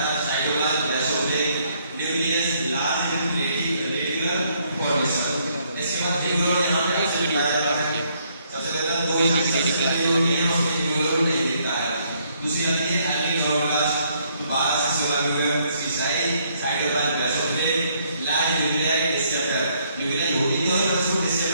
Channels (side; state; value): both; inverted; correlation -0.70